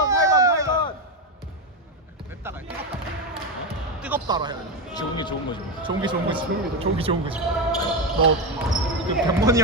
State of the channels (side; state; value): both; normal; correlation 0.12